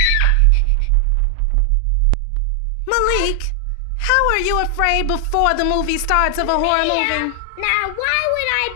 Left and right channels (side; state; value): both; different; correlation 0.00